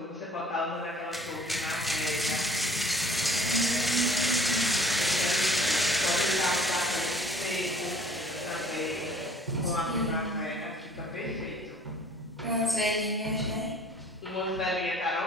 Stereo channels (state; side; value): normal; both; correlation 0.52